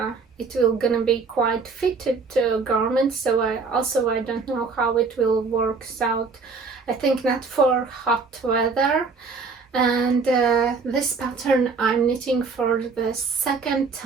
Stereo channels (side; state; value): left; quieter; 4.6 dB